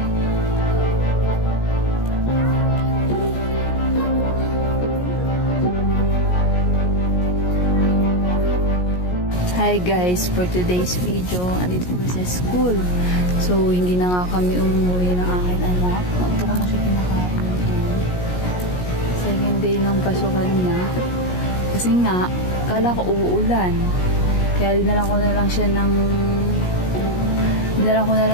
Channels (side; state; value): right; late; 17 ms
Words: Hi guys, for today's video, andito kami sa school. So, hindi na nga kami umuwi ng aking anak. Ito ko na siya pinakain. Second day ng pasukan niya. Kasi nga, kala ko uulan. Kaya dinalan ko na lang siya ng